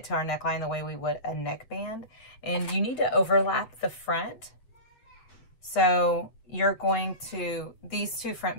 to our neckline the way we would a neckband. And you need to overlap the front. So you're going to, these two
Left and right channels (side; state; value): right; late; 7.7 ms